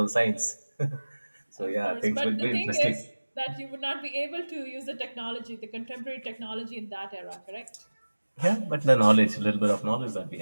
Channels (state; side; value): inverted; both; correlation -1.00